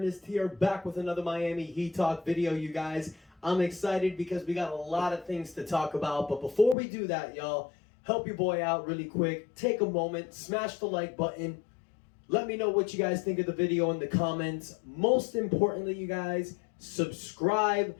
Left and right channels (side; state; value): right; drops out; at 6.8 s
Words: here, back with another Miami Heat Talk video, you guys. I'm excited because we got a lot of things to talk about. But before we do that, y'all, help your boy out really quick. Take a moment, smash the like button. Let me know what you guys think of the video in the comments. Most importantly, you guys, subscribe.